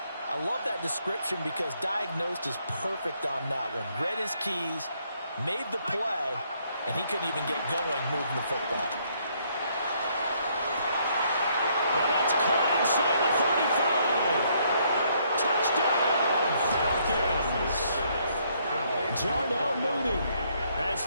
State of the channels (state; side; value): inverted; both; correlation -0.69